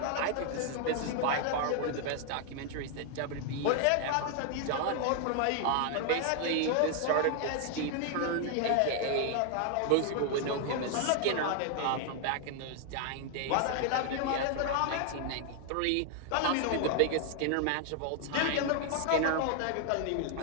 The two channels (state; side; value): different; both; correlation 0.00